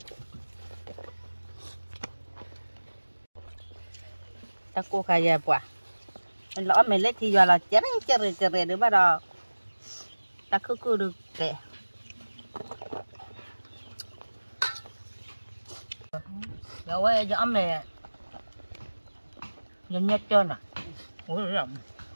ta cô khai ra quả lỡ mày lấy thì giờ là chén chè được bắt đầu ta cứ được kệ rồi giờ ông này nhìn nhất trơn à ôi rộng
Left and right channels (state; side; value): inverted; both; correlation -1.00